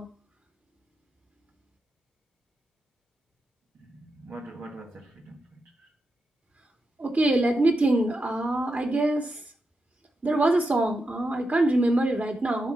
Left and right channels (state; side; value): normal; both; correlation 0.87